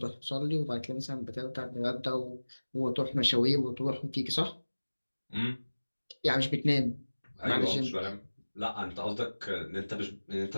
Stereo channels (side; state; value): both; inverted; correlation -1.00